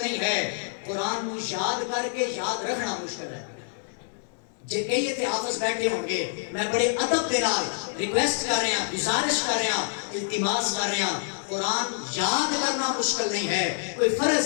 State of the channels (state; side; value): silent; right; digital silence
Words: نہیں ہے, قرآن کو یاد کر کے یاد رکھنا مشکل ہے. جے کئی تے حافظ بیٹھے ہوں گے, میں بڑے ادب کے نال ریکویسٹ کر رہے ہیں, گزارش کر رہے ہیں, التماس کر رہے ہیں, قرآن یاد کرنا مشکل نہیں ہے, کوئی